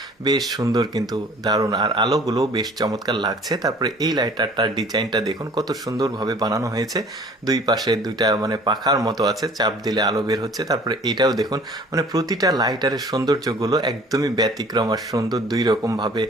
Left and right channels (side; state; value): both; normal; correlation 0.50